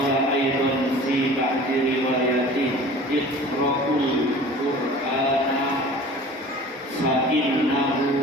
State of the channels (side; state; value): both; normal; correlation 0.43